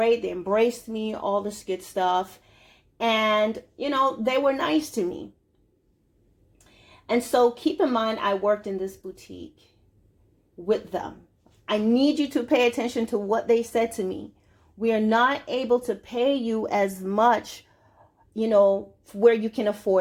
They embraced me, all this good stuff. And, they were nice to me. And so keep in mind, I worked in this boutique with them. I need you to pay attention to what they said to me. We are not able to pay you as much, where you can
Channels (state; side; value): identical; both; correlation 1.00